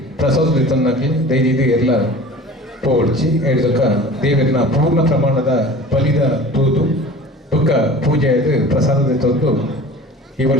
ಪ್ರಸಾದ ತನ್ನಕ್ಕೆ ದಯಜೀದು ಎಲ್ಲ ಪೋಡ್ಚಿ ಹೇಳಿದಕ್ಕ ದೇವಿಯನ್ನ ಪೂರ್ಣ ಪ್ರಮಾಣದ ಬಲಿದ ತೂದು ದುಃಖ ಪೂಜೆ ಆಯ್ತು ಪ್ರಸಾದದ ತಂದು ಈ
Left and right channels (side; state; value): both; normal; correlation 0.41